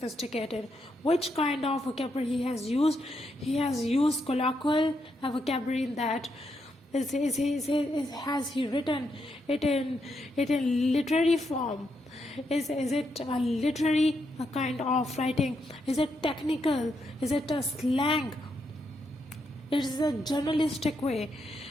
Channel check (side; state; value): both; normal; correlation 0.80